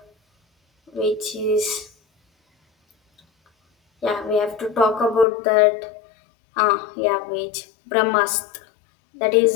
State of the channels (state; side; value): drops out; right; at 5.2 s